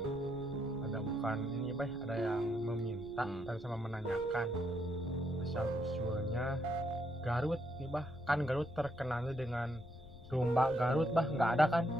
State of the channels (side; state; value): left; noise; rumble, 18 dB below the sound